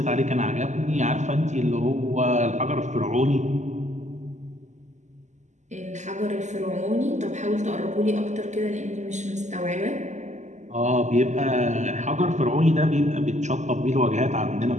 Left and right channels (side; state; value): left; late; 0.34 ms